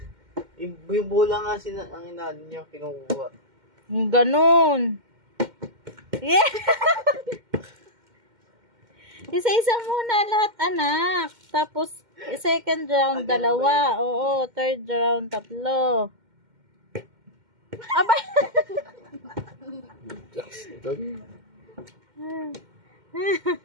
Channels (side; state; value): left; late; 2.1 ms